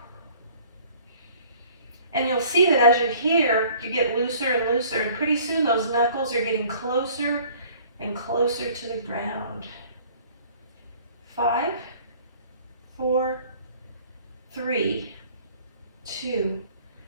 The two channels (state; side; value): inverted; both; correlation -0.53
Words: And you'll see that as you're here, you get looser and looser, and pretty soon those knuckles are getting closer and closer to the ground. 5, 4, 3, 2,